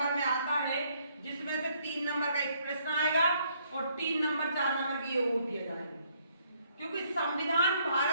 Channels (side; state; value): both; inverted; correlation -0.68